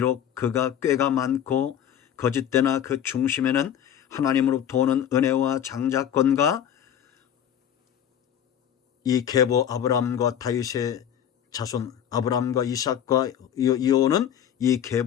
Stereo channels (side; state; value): right; quieter; 9.7 dB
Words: 그가 꾀가 많고 거짓되나 그 중심에는 하나님으로부터 오는 은혜와 장자권과 이 계보 아브라함과 다윗의 자손 아브라함과 이삭과 이어오는 이